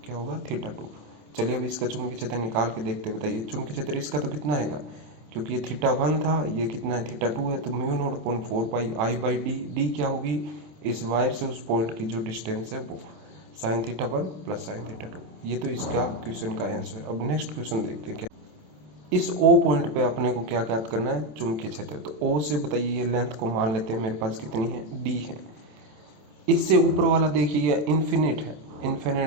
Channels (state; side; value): late; left; 27 ms